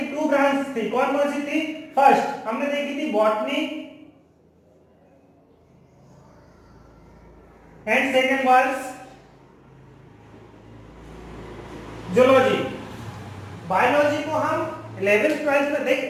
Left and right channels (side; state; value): both; identical; correlation 1.00